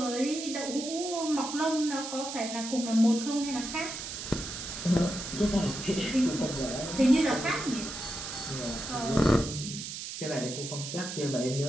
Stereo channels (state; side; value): noise; right; hiss, 7 dB below the sound